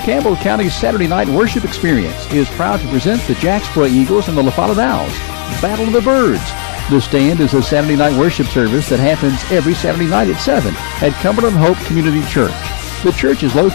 Campbell County's Saturday night worship experience is proud to present the Jacksboro Eagles and the La Follette Owls. Battle of the Birds. The Stand is a Saturday night worship service that happens every Saturday night at 7 at Cumberland Hope Community Church. The church is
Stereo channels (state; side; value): silent; right; 55 dB below the other